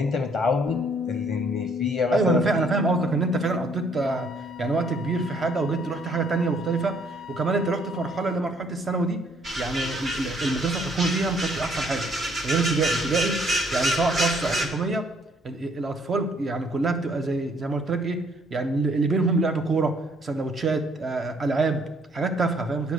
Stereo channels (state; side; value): normal; both; correlation 0.64